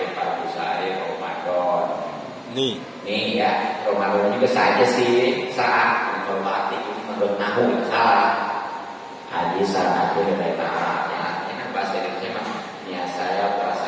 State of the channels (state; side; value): identical; both; correlation 1.00